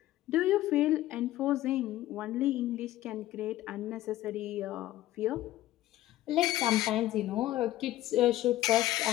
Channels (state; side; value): quieter; right; 14.9 dB